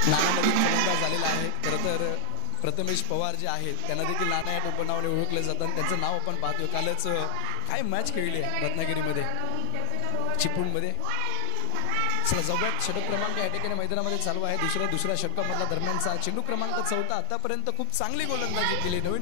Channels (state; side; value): different; both; correlation 0.00